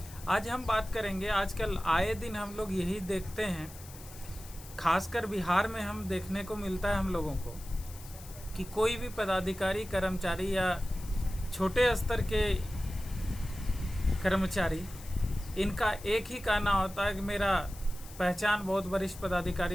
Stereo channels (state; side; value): noise; left; hiss, 17 dB below the sound